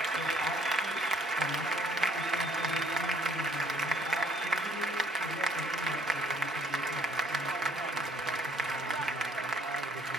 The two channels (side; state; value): both; normal; correlation 0.60